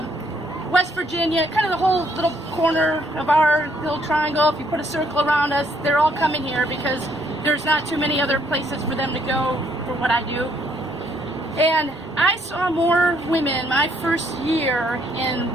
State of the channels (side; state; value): both; normal; correlation 0.69